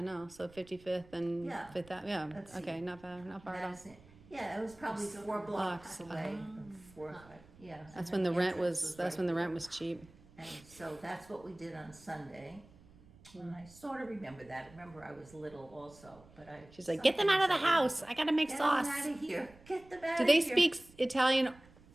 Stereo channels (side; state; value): right; noise; rumble, 24 dB below the sound